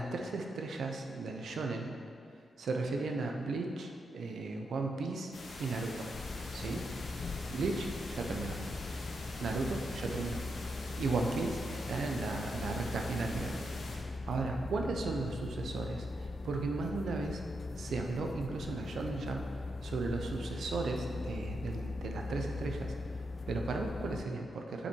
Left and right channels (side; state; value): both; normal; correlation 0.83